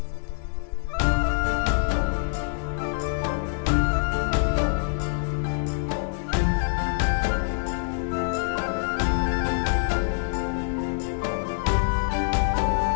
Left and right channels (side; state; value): right; silent; digital silence